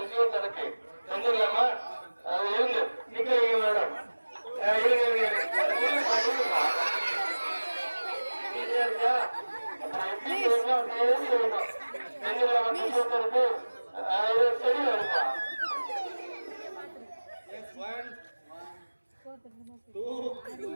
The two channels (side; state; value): both; inverted; correlation -1.00